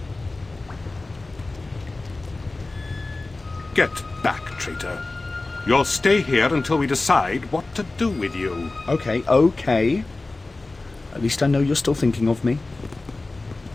Get back, traitor. You'll stay here until we decide what to do with you. Okay. At least I know you're still thinking of me.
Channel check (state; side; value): quieter; right; 3.2 dB